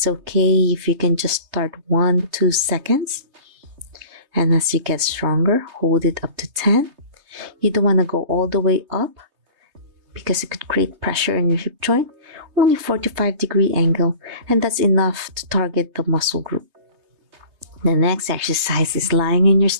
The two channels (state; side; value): late; left; 3.3 ms